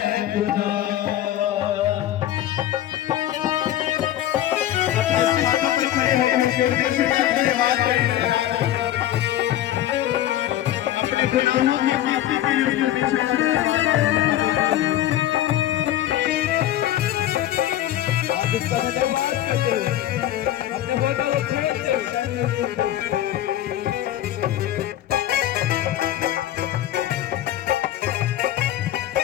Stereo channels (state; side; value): quieter; right; 12.8 dB